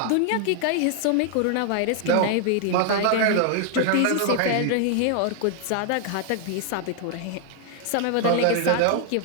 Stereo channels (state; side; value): different; both; correlation 0.00